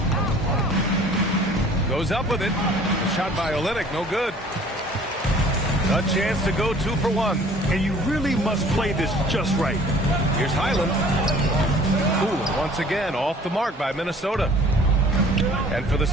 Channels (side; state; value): both; normal; correlation 0.51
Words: Goes up with it. A shot by Olynyk, no good. A chance to go 2 for 1. And you really must play this just right. Here's Highland. Ooh, once again, off the mark by Minnesota. And for the